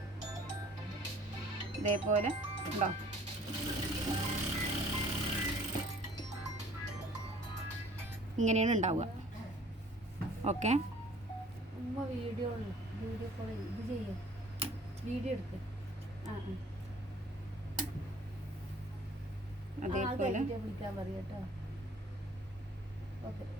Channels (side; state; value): both; normal; correlation 0.53